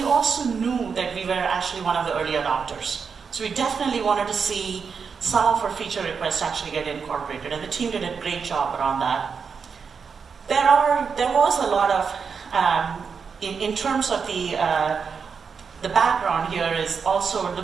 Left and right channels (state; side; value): quieter; left; 5.9 dB